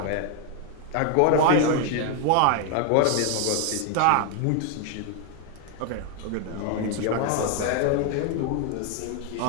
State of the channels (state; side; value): different; both; correlation 0.00